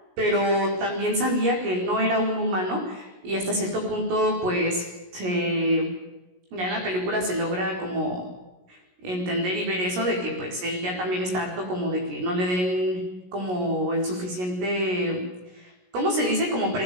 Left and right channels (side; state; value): left; late; 16 ms